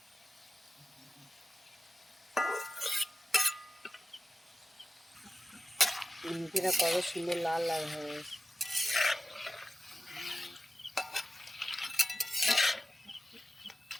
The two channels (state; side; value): normal; both; correlation 0.93